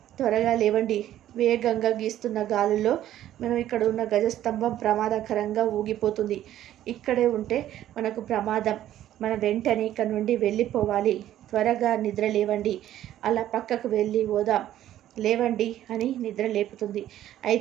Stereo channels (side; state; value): left; quieter; 12.5 dB